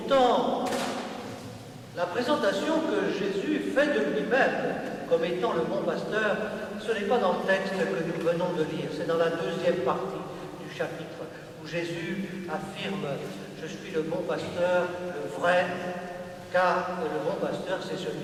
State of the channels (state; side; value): identical; both; correlation 1.00